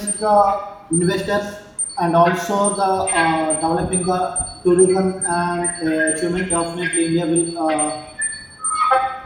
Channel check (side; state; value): both; identical; correlation 1.00